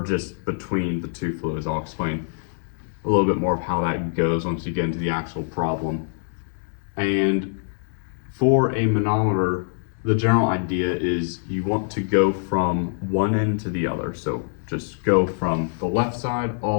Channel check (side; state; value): right; silent; digital silence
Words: just between the two fluids. I'll explain a little bit more of how that goes once you get into the actual problem. And for a manometer, the general idea is you want to go from one end to the other. So just go from the left side